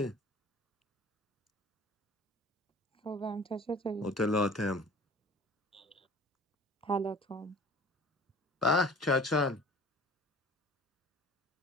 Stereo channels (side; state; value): both; normal; correlation 0.44